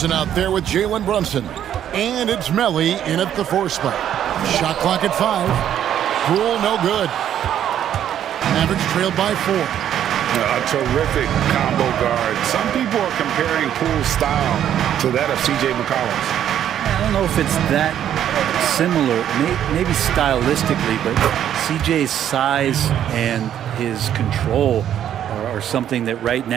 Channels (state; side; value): quieter; left; 10.3 dB